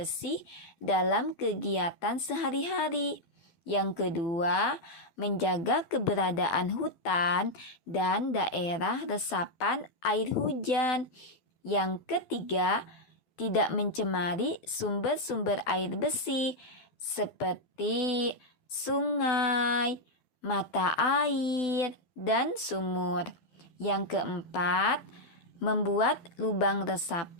dalam kegiatan sehari-hari. Yang kedua, menjaga keberadaan hutan dan daerah resapan air hujan. Yang ketiga, tidak mencemari sumber-sumber air bersih seperti sungai, mata air, dan sumur. Yang keempat, membuat lubang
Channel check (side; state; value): right; late; 12 ms